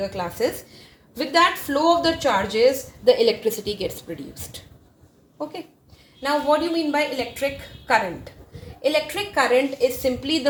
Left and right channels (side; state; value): both; identical; correlation 1.00